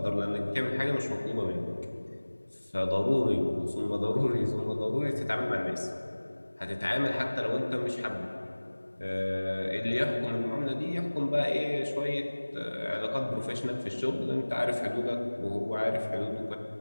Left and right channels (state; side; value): inverted; both; correlation -1.00